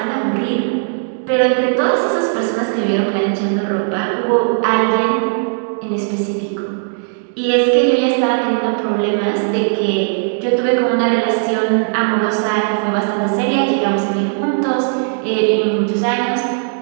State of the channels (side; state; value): left; silent; 68 dB below the other